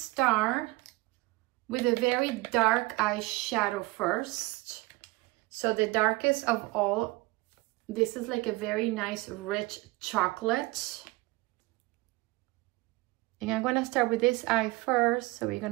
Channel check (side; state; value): left; quieter; 21.8 dB